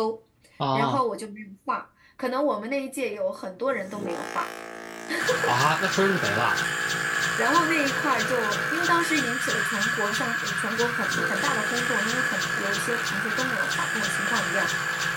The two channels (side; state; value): both; identical; correlation 1.00